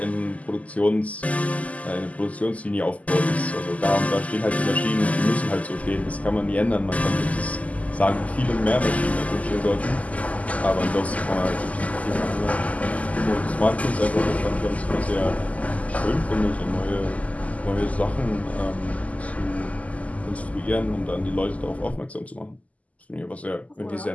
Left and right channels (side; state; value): right; late; 0.072 ms